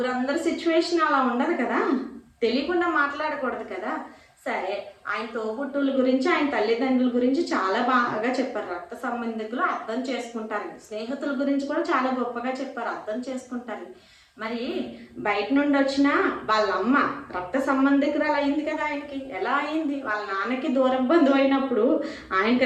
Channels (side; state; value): both; identical; correlation 1.00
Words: సిచ్యువేషన్ అలా ఉండదు కదా, తెలియకుండా మాట్లాడకూడదు కదా. సరే, ఆయన తోబుట్టుల గురించి, ఆయన తల్లిదండ్రుల గురించి చాలా బాగా చెప్పారు. రక్త సంబంధికులు అర్థం చేసుకుంటారు. స్నేహితుల గురించి కూడా చాలా గొప్పగా చెప్పారు, అర్థం చేసుకుంటారు. మరి బయట నుండి వచ్చిన వాళ్ళ అమ్మ రక్త సంబంధికురాలు అయింది కదా ఆయనకి. ఎలా అయింది? వాళ్ళ నాన్నకి దూర బంధువు అయినప్పుడు ఆయనకి